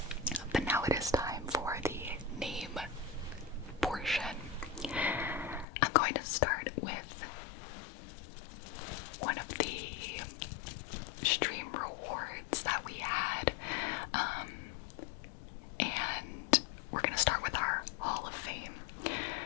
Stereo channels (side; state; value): right; drops out; at 5.7 s